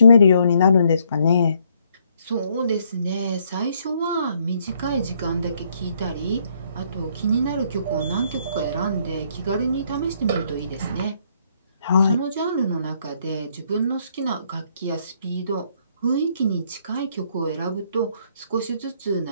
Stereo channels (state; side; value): inverted; both; correlation -0.69